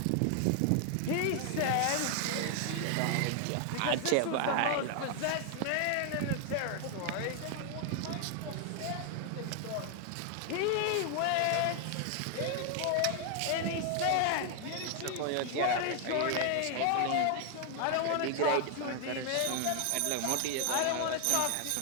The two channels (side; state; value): both; different; correlation 0.00